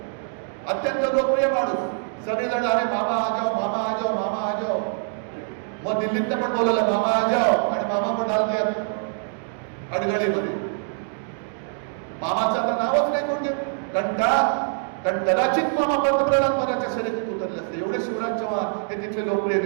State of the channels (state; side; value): silent; left; digital silence